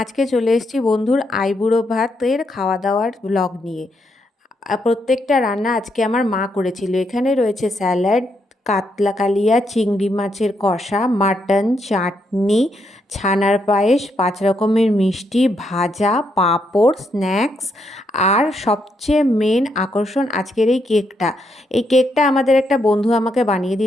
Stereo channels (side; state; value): both; normal; correlation 0.78